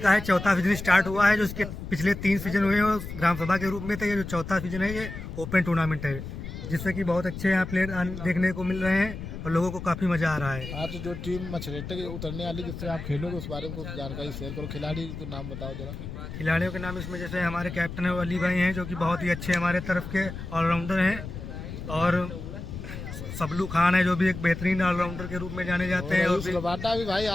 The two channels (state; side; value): noise; left; rumble, 9 dB below the sound